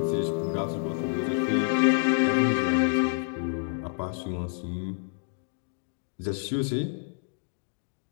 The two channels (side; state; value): right; silent; 59 dB below the other